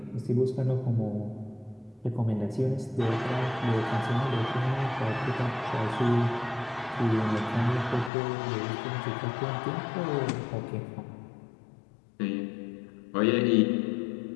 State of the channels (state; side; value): drops out; right; at 8.1 s